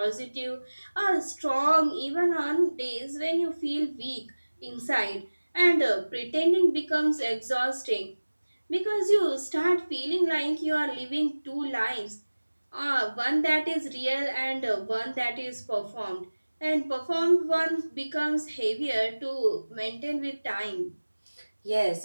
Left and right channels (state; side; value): inverted; both; correlation -1.00